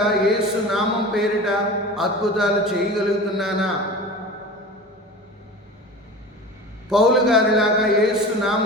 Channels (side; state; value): both; normal; correlation 0.35